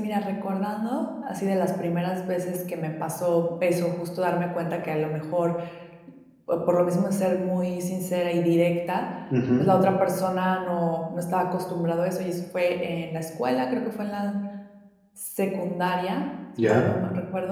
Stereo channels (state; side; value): identical; both; correlation 1.00